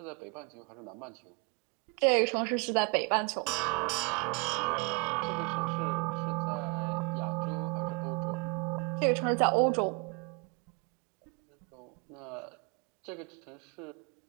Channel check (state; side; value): quieter; left; 28.8 dB